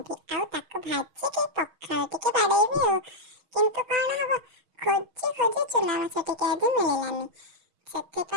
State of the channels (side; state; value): left; late; 6.3 ms